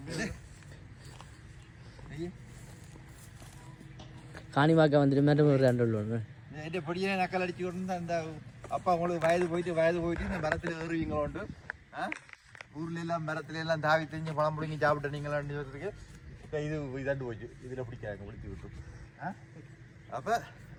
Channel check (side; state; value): both; identical; correlation 1.00